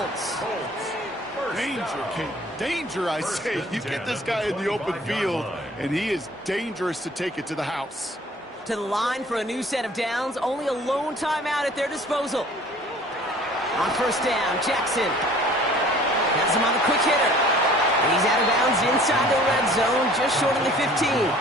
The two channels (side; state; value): both; normal; correlation 0.51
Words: Danger, Kate. Danger, I say. You get this guy in the open field, and he is dangerous to take it to the house. To the line for a new set of downs. Only a lone timeout at their disposal. On 1st down, Jackson has him on the quick hitter. And he's out of bounds inside the red zone, just short of the 15.